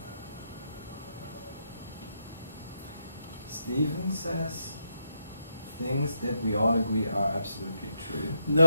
Stephen says things that we all agree are absolutely true.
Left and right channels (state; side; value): inverted; both; correlation -0.81